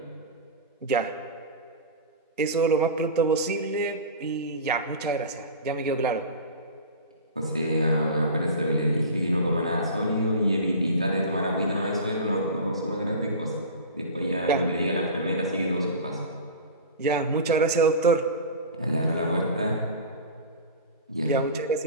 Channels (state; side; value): inverted; both; correlation -0.31